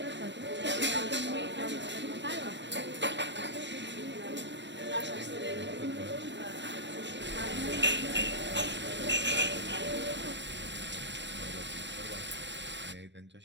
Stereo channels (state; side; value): late; left; 0.53 ms